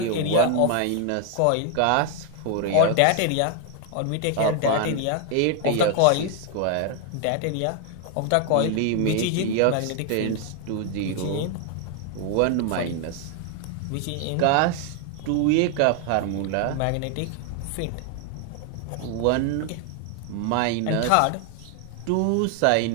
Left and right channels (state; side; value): different; both; correlation 0.00